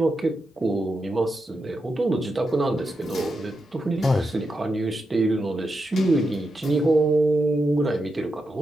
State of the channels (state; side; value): normal; both; correlation 0.87